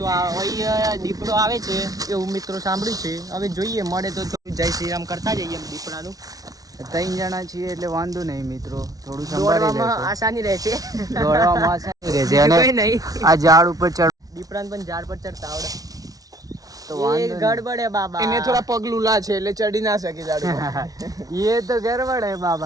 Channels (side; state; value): left; late; 0.18 ms